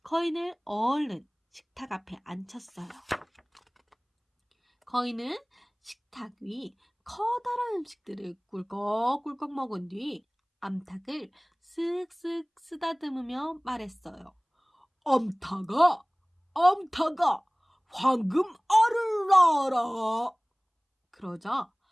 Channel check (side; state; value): both; identical; correlation 1.00